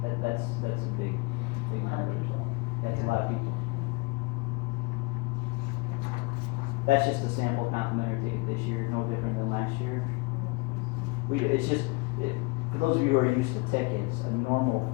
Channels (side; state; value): right; quieter; 26.0 dB